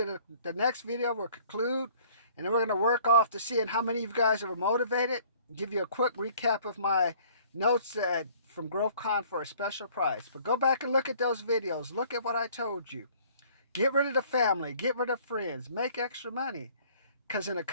the next video. We'll conclude, and then we're going to work off to seeing how many of you guys are motivated. Give you a quick recap of my notes from GrowthCon for a special price. But go back and look at those videos. Look at what I told you. Get rid of the family. Get rid of friends. Make extra money. Because in a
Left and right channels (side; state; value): both; inverted; correlation -0.55